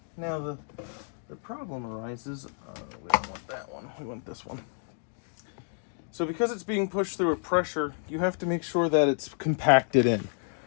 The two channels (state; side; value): silent; right; 58 dB below the other